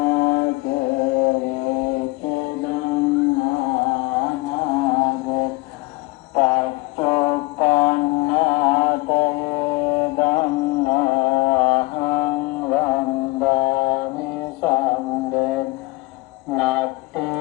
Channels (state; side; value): quieter; right; 23.3 dB